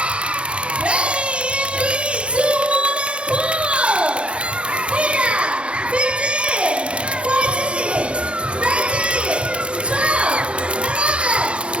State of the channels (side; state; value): left; late; 0.058 ms